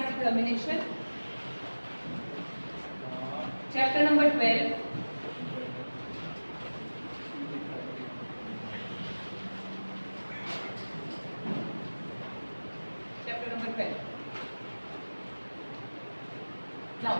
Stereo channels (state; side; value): inverted; both; correlation -1.00